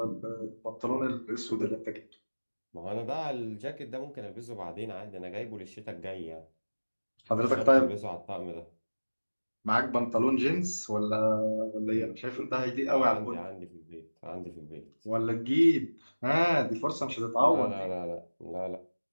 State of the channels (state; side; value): inverted; both; correlation -1.00